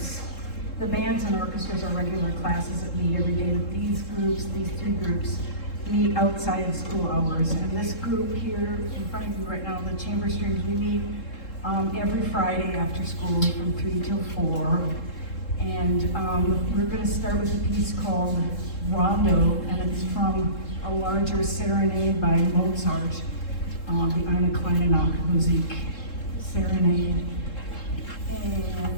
The bands and orchestras are regular classes that meet every day. These groups, these three groups, meet outside of school hours. And this group here in front of you right now, the chamber strings, we meet every Friday after school from 3 till 4. And we're going to start with a piece called Rondo, and it's from a larger serenade by Mozart, the Eine kleine Nachtmusik serenade.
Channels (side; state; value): right; late; 3.7 ms